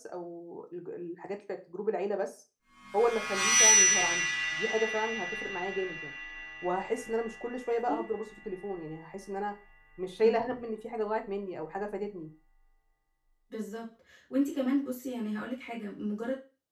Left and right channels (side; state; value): both; identical; correlation 1.00